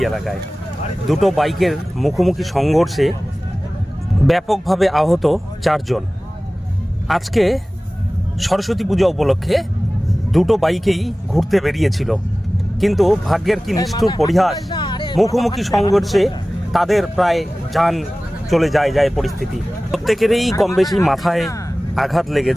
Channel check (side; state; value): both; normal; correlation 0.97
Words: এলাকায়। দুটো বাইকের মুখোমুখি সংঘর্ষে ব্যাপকভাবে আহত 4 জন। আজকে সরস্বতী পূজা উপলক্ষে দুটো বাইকেই ঘুরতে বেরিয়েছিল, কিন্তু ভাগ্যের কি নিষ্ঠুর পরিহাস, মুখোমুখি সংঘর্ষে তাদের প্রায় যান চলে যায় পরিস্থিতি। প্রত্যেকেরই কম বেশি মাথায় আঘাত